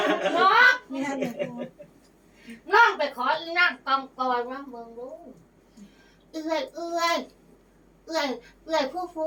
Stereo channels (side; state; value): both; identical; correlation 1.00